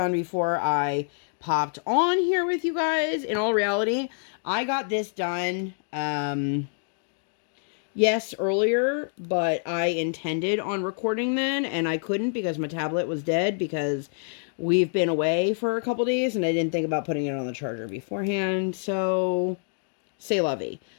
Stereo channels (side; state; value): right; silent; digital silence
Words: before I popped on here with you guys. In all reality, I got this done, yes, earlier, but I intended on recording then, and I couldn't because my tablet was dead because we've been away for a couple days, and I didn't think about putting it on the charger beforehand, so c'est la vie.